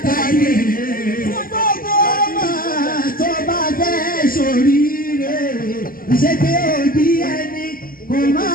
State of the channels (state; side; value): late; right; 0.42 ms